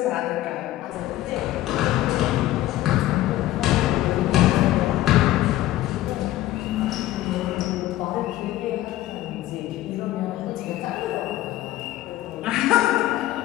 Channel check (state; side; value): quieter; right; 15.0 dB